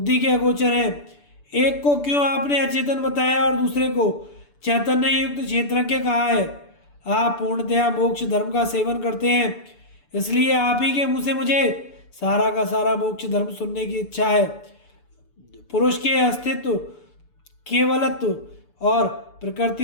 के अगोचर हैं। एक को क्यों आपने अचेतन बताया और दूसरे को चैतन्य युक्त क्षेत्रज्ञ कहा है? आप पूर्णतया मोक्ष धर्म का सेवन करते हैं, इसलिए आप ही के मुँह से मुझे सारा का सारा मोक्ष धर्म सुनने की इच्छा है। पुरुष के अस्तित्व, केवलत्व और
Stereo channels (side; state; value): right; late; 6.9 ms